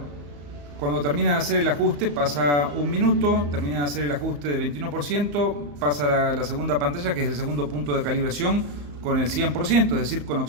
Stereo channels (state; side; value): late; left; 34 ms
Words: cuando termina de hacer el ajuste pasa un minuto, termina de hacer el ajuste de 21%, pasa a la segunda pantalla, que es el segundo punto de calibración, con el 100%, es decir, con